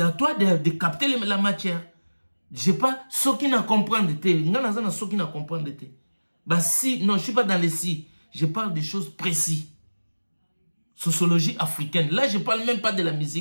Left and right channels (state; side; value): inverted; both; correlation -1.00